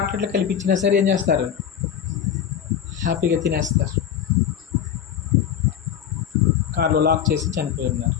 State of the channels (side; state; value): right; quieter; 9.1 dB